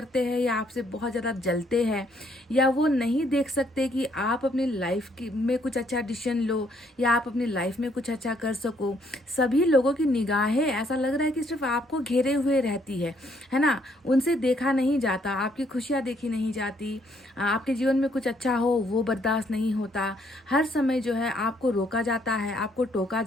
हैं या आपसे बहुत ज़्यादा जलते हैं, या वो नहीं देख सकते कि आप अपनी लाइफ की में कुछ अच्छा डिसीजन लो या आप अपनी लाइफ में कुछ अच्छा कर सको। सभी लोगों की निगाहें ऐसा लग रहा है कि सिर्फ आपको घेरे हुए रहती है ना। उनसे देखा नहीं जाता, आपकी खुशियाँ देखी नहीं जाती, आपके जीवन में कुछ अच्छा हो वो बर्दाश्त नहीं होता। हर समय जो है आपको रोका जाता है, आपको टोका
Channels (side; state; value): both; normal; correlation 0.69